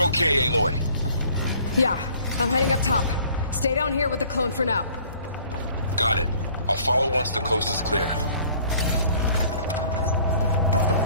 okay, Aloy? Yeah, I'm heading up top. Stay down here with the clone for now. Got it. I'll follow once the coast is clear.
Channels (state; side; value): inverted; both; correlation -0.55